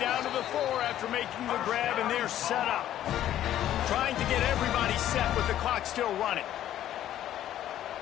to the 4 after making the grab, and they're set up. Trying to get everybody set with the clock still running.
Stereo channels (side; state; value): right; quieter; 12.0 dB